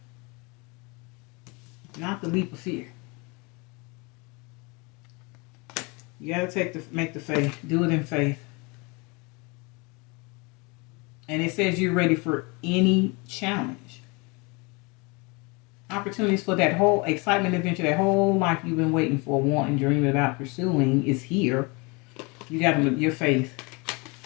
Not the leap of fear. You gotta make the faith. Do it in faith. And it says you're ready for any challenge. Opportunities for that whole excitement adventure, that whole life you've been waiting for, wanting, dreaming about, pursuing is here. You got your faith.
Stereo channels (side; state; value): right; quieter; 28.6 dB